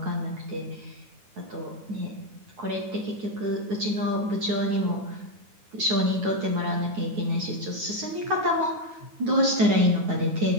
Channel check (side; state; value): left; late; 9.4 ms